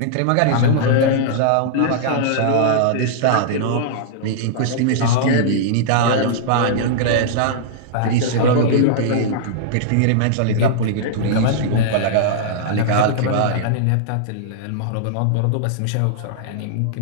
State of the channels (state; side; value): different; both; correlation -0.02